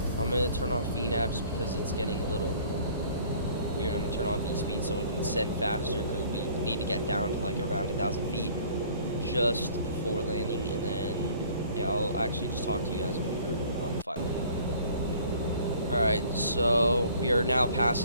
I'm going to turn off VNAV just because it's getting a little weird. I'm going to turn on V-speed so we can send faster, because we need to get down to like around 1,000 feet just before landing, and then yeah, I'll actually just talk to you guys when we're on the final. Alright, so we are now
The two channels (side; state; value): both; inverted; correlation -0.53